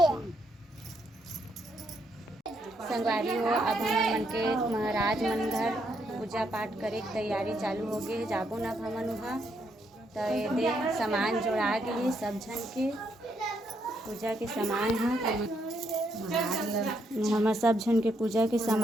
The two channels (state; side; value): normal; both; correlation 0.76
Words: संगवारी हो, अब हम मन के महाराज मन घर पूजा पाठ करे की तैयारी चालू हो गए। जाबो न अब हमन वहाँ। तो ये सामान जोड़ा गए सब झन के पूजा के सामान है। हमार सब झन के पूजा के